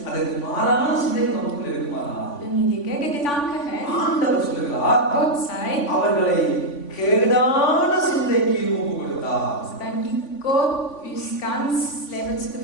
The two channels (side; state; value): right; late; 3.5 ms